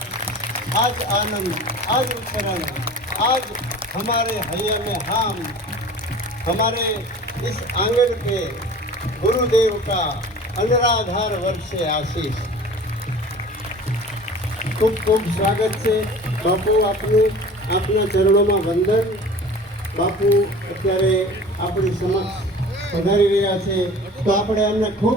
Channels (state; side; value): normal; both; correlation 0.41